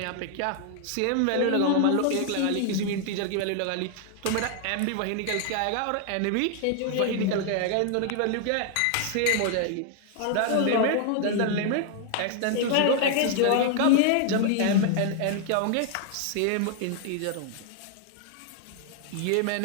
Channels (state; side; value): different; both; correlation 0.00